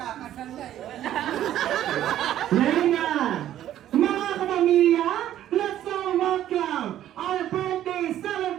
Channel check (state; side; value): quieter; left; 12.0 dB